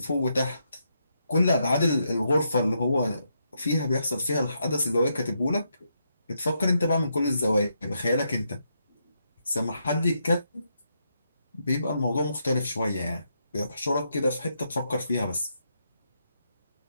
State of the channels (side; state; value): both; inverted; correlation -0.80